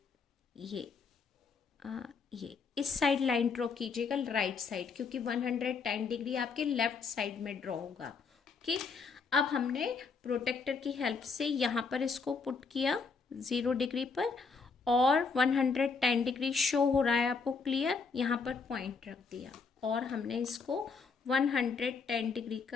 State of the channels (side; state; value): right; quieter; 5.0 dB